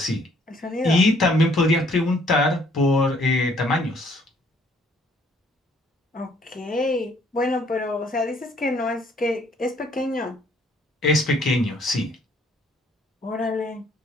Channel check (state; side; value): normal; both; correlation 0.63